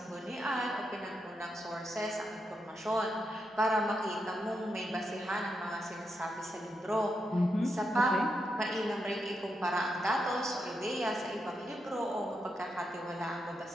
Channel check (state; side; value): normal; both; correlation 0.84